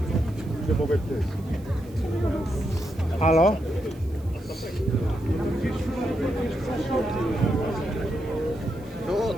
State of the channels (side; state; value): right; noise; hiss, 27 dB below the sound